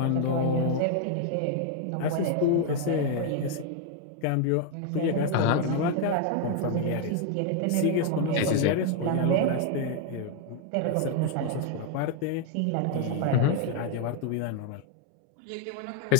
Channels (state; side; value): different; both; correlation 0.00